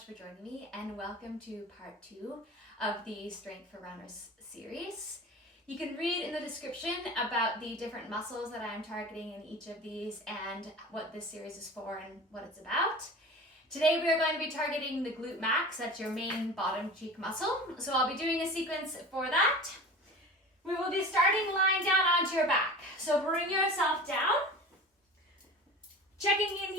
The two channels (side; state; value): both; normal; correlation 0.35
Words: for joining me and welcome to part 2 of the Strength for Runners series. You can read in the description about the different muscles that I'm targeting in each of these and what this series is for and what it's about. Today we are going to be targeting the glute max, that's your main bottom cheek muscle. So I'll be doing a sequence for that. We will be starting lying down onto your back. So bring yourself down. Checking in